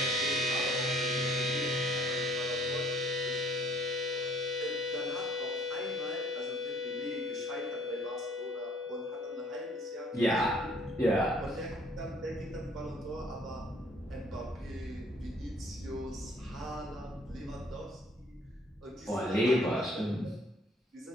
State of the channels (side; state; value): both; normal; correlation 0.58